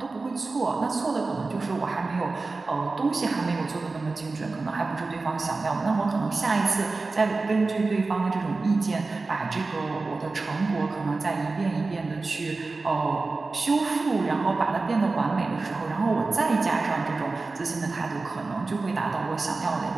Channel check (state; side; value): quieter; left; 3.7 dB